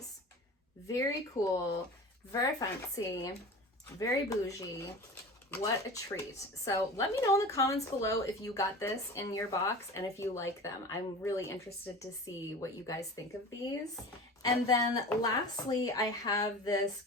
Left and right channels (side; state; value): both; normal; correlation 0.35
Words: Very cool, very fancy, very bougie. What a treat. So let me know in the comments below if you got this in your box and if you like them. I'm really interested to see what you guys think of these. And then lastly, I have this